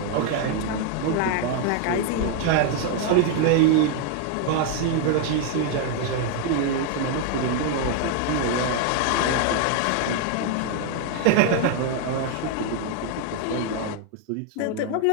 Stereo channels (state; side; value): different; both; correlation 0.00